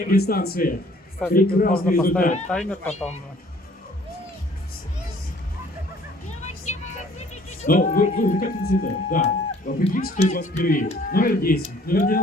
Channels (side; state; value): both; normal; correlation 0.57